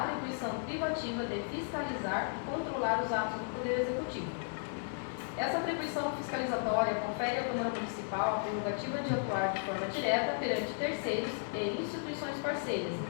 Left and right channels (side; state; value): right; silent; digital silence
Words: privativa de fiscalizar e controlar os atos do Poder Executivo. Essa atribuição fiscalizatória confere à Câmara Municipal a prerrogativa de atuar de forma direta perante terceiros e instituições parceiras,